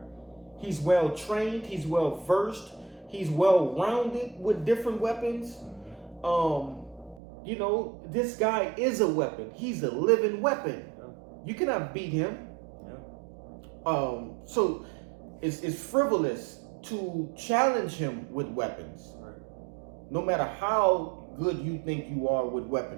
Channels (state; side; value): drops out; left; at 7.2 s